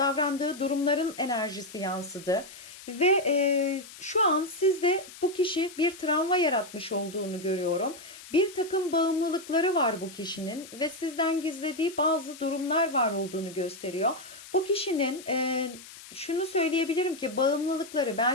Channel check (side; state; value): left; noise; hiss, 17 dB below the sound